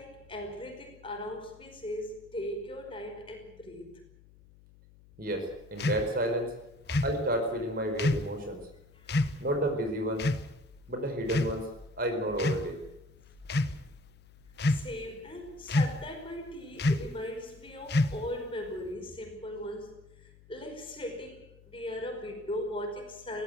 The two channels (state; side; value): noise; left; hum, 23 dB below the sound